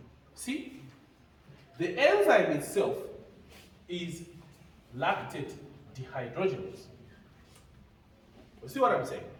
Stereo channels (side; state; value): both; identical; correlation 1.00